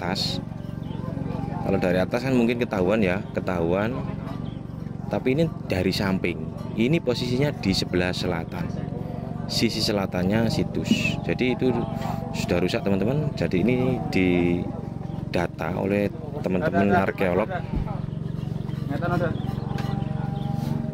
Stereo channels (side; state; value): both; identical; correlation 1.00